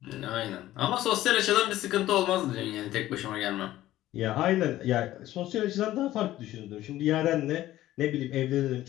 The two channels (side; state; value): right; quieter; 14.6 dB